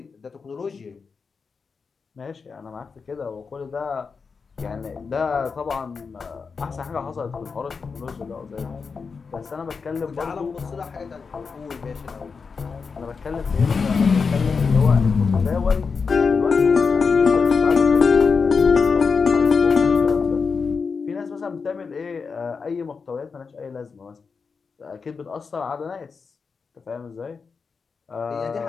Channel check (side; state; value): right; quieter; 5.2 dB